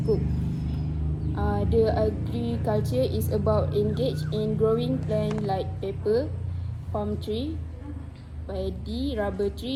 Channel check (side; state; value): both; identical; correlation 1.00